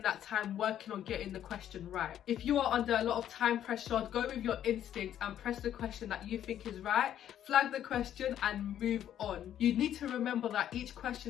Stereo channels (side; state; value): right; quieter; 10.7 dB